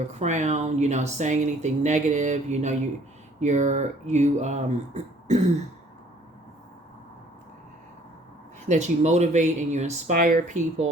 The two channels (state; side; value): normal; both; correlation 0.58